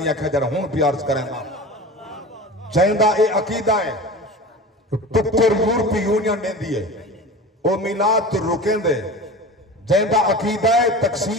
کھجر ہون پیارز کریں دا. جیندہ اے عقیدہ ہے ٹکر یورپی یونین دے دیئے او میلاد تو رکیں دے. جیندہ عقیدہ ہے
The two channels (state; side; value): normal; both; correlation 0.33